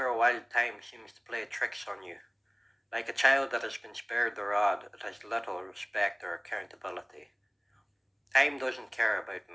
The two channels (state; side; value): identical; both; correlation 1.00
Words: a while time seems to play tricks on you. Like a child that has been spared the rod, it has little respect or accountability. Time doesn't care about